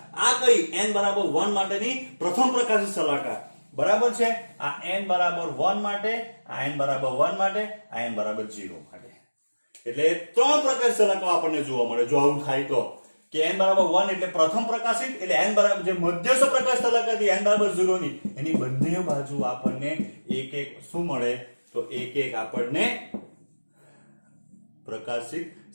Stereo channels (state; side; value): inverted; both; correlation -1.00